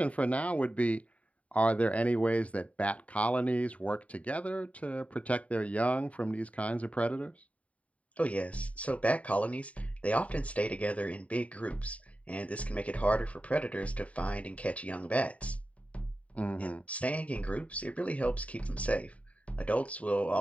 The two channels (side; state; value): right; late; 0.067 ms